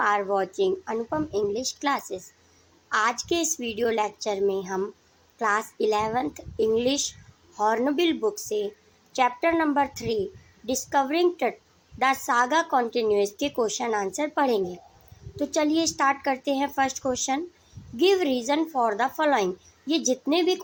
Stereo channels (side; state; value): both; identical; correlation 1.00